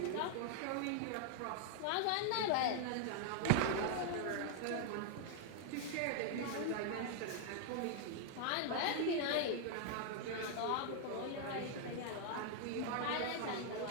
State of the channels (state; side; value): different; both; correlation 0.00